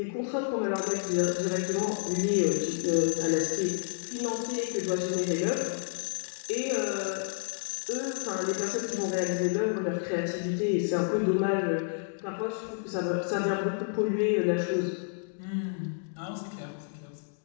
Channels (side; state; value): right; silent; 58 dB below the other